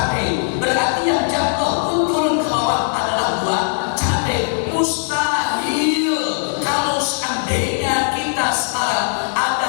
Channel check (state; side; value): silent; right; 67 dB below the other